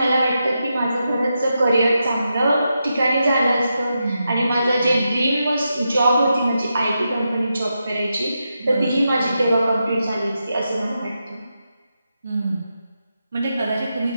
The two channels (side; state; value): both; inverted; correlation -0.87